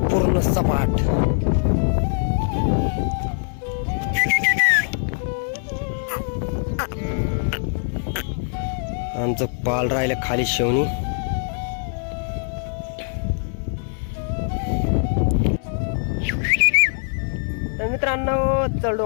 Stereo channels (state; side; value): silent; right; 61 dB below the other